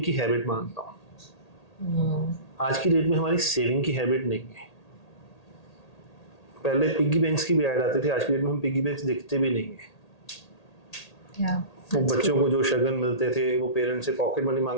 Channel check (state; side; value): late; right; 1.8 ms